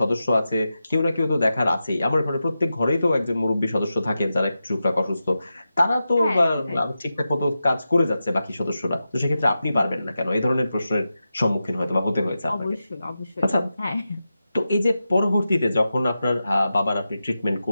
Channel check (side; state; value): both; inverted; correlation -0.91